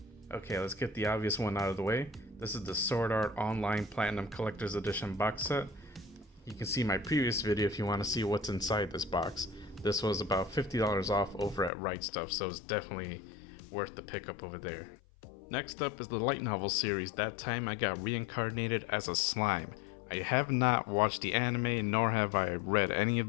Okay, let's get the obvious one out of the way. This is the Sword Art Online Platinum Collector's Edition box set. You can see my previous video if you want to see what's inside this box. This was about $50 off over at Right Stuff, so it's definitely worth the pickup over there. Next up is the light novel series. That time I got reincarnated as a slime. I have not watched the anime, nor have I read any of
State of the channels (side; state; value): right; drops out; at 11.7 s